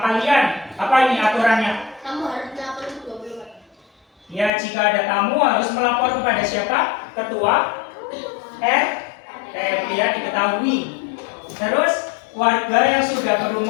apa ini aturannya? Kamu harus lapor ke 20. Ya, jika ada tamu harus melapor kepada siapa? Ketua RT, ya diketahui. Terus warga yang sudah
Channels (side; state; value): right; drops out; at 4.5 s